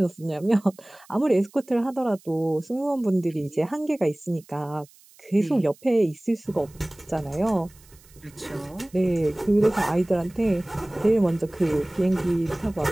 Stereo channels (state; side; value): noise; right; hiss, 27 dB below the sound